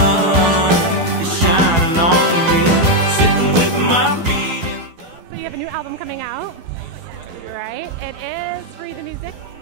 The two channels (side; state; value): left; late; 12 ms